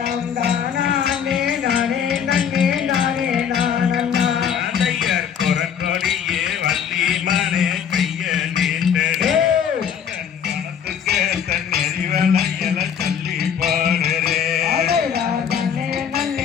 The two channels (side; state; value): right; quieter; 8.0 dB